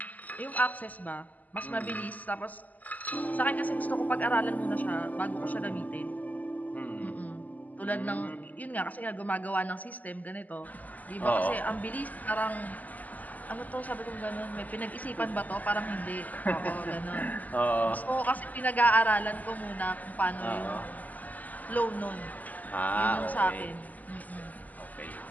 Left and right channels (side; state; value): right; late; 0.080 ms